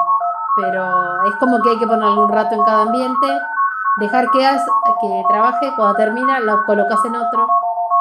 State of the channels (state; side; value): identical; both; correlation 1.00